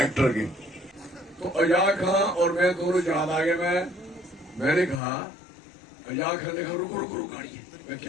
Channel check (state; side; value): drops out; right; at 5.0 s